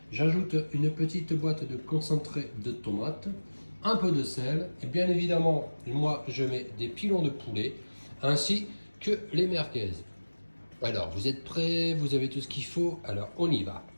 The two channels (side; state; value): both; inverted; correlation -1.00